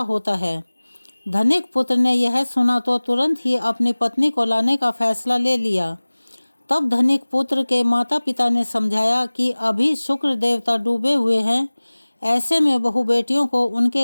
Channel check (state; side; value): inverted; both; correlation -1.00